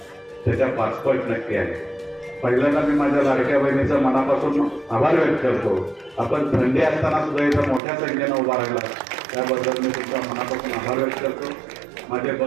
त्याच्या 5 पट नक्की आहे. पहिल्यांदा मी माझ्या लाडक्या बहिणीचा मनापासून आभार व्यक्त करतो. आपण थंडी असताना सुद्धा इथं मोठ्या संख्येनं उभा राहिला, त्याबद्दल मी तुमचा मनापासून आभार व्यक्त करतो. माझे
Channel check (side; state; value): left; drops out; at 7.8 s